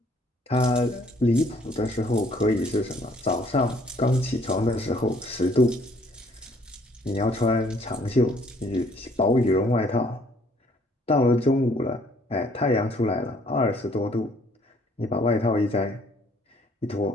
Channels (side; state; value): both; normal; correlation 0.62